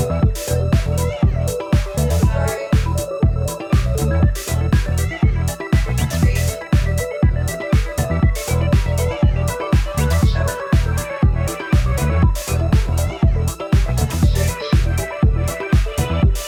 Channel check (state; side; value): identical; both; correlation 1.00